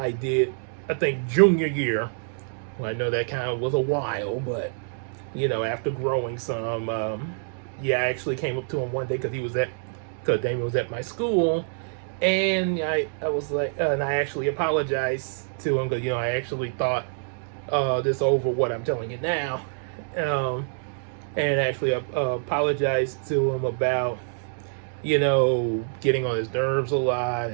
did, I think, junior year. Well, I know that kind of was a while, but after growing some, I actually came up to him one day because Damien was at my school, and I was like, and I actually apologized to him, because I actually thought this over what I'm telling you now, and actually apologized to him about getting on his nerves a lot,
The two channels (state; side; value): silent; left; digital silence